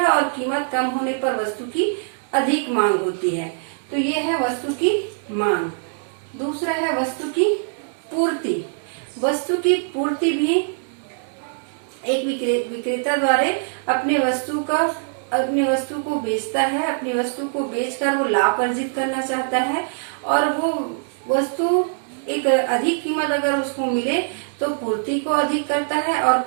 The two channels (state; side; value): silent; left; 64 dB below the other